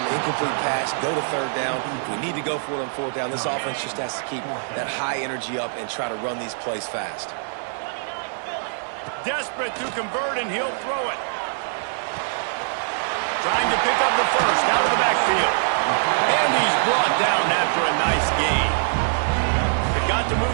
incomplete pass, go to 3rd down. We need to go for it on 4th down. This offense just has to keep that high energy up and try to run these plays fast. Desperate to convert, and he'll throw it. Trying to pick up the 1st out of the backfield. And he's brought down after a nice gain. They've got to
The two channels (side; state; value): left; silent; 63 dB below the other